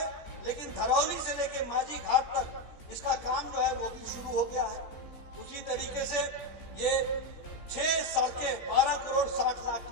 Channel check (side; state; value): right; late; 14 ms